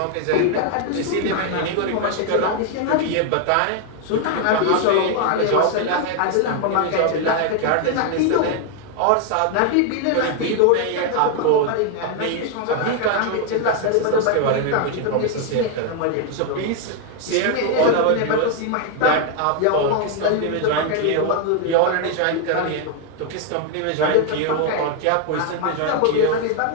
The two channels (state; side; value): different; both; correlation 0.00